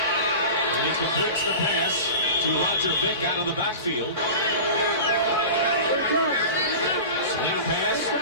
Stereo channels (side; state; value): both; inverted; correlation -0.32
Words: And he completes the pass to Roger Vick out of the backfield. Swing pass,